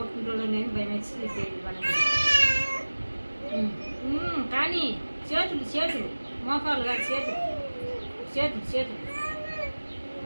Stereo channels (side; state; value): both; inverted; correlation -1.00